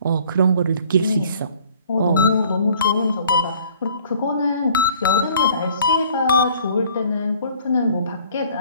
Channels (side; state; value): both; inverted; correlation -0.55